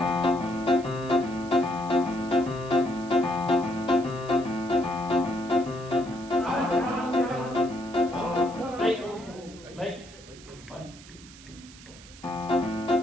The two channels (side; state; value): right; noise; hiss, 20 dB below the sound